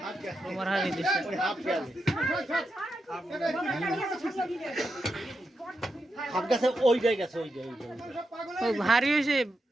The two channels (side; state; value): both; normal; correlation 0.86